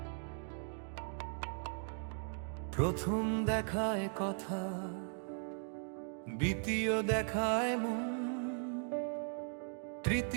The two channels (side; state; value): left; silent; 52 dB below the other